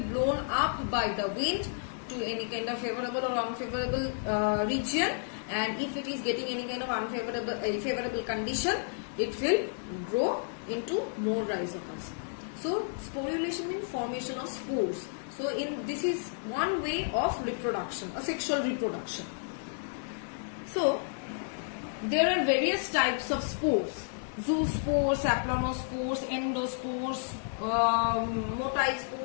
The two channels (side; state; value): right; silent; digital silence